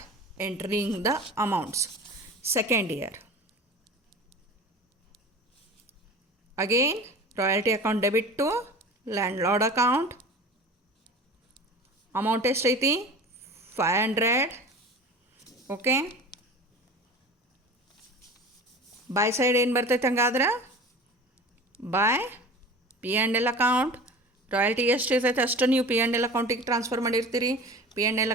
entering the amounts. Second year again royalty account debit to landlord account. amount ಎಷ್ಟೈತಿ? 500. Okay, by side ಏನು ಬರ್ತೈತೆ? ಹಂಗಾದ್ರೆ by P and L account. Royalty ಎಷ್ಟು ಇರ್ತೈತೆ ಅಷ್ಟು ನೀವು P and L ಅಕೌಂಟಿಗೆ transfer ಮಾಡಿರ್ತೀರಿ. P and L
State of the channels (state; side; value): normal; both; correlation 0.37